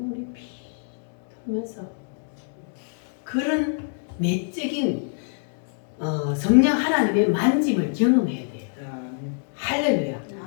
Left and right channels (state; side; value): silent; right; 61 dB below the other